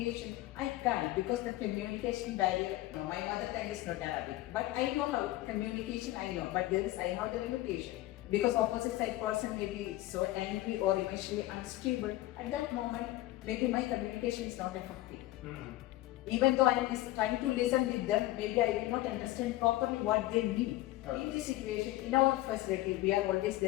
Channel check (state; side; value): quieter; right; 16.8 dB